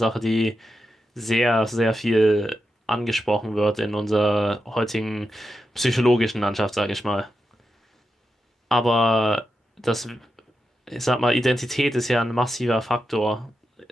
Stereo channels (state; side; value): normal; both; correlation 0.88